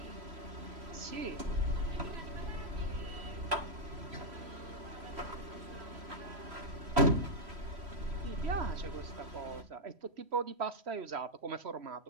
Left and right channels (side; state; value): left; late; 3.1 ms